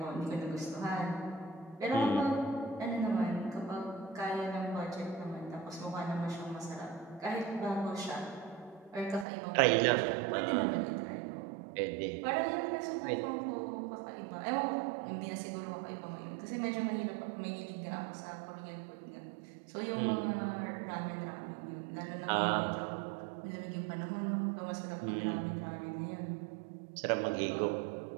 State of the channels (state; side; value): drops out; left; at 9.2 s